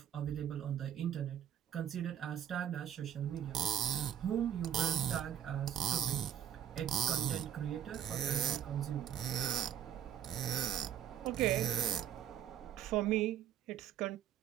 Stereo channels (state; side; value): quieter; left; 10.0 dB